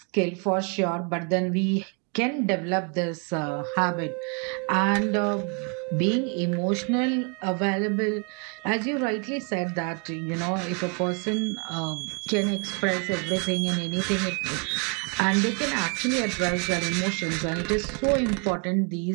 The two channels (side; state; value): left; quieter; 36.6 dB